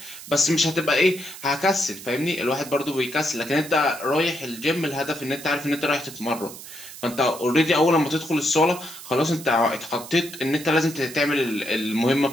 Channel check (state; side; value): noise; right; hiss, 14 dB below the sound